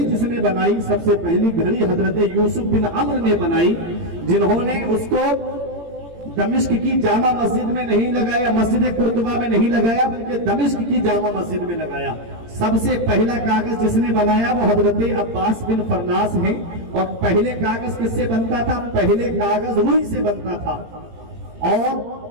جس نے بنائی، سب سے پہلی گھڑی حضرت یوسف بن عمر نے بنائی، جنہوں نے اس کو دمشق کی جامع مسجد میں نہیں لگایا، مسجد قرطبہ میں نہیں لگایا، بلکہ دمشق کی جامع مسجد میں لگایا۔ سب سے پہلا کاغذ جس نے بنایا وہ حضرت عباس بن فرناس ہیں۔ اور پہلے کاغذ کس سے بنتا تھا؟ پہلے کاغذ روئی سے بنتا تھا، اور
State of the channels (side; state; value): left; late; 18 ms